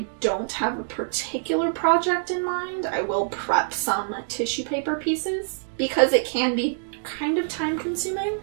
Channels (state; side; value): silent; left; digital silence